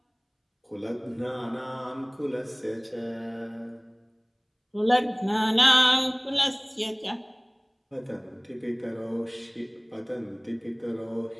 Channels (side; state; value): both; identical; correlation 1.00